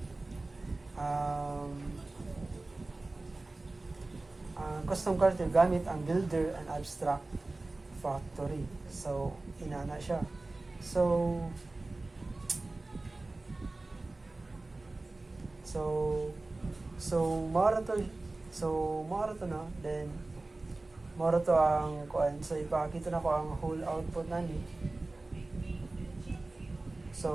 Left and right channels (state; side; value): quieter; left; 3.1 dB